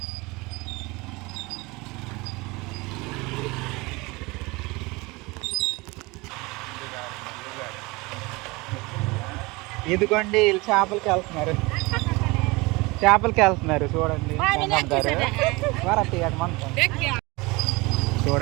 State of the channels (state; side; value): quieter; left; 24.1 dB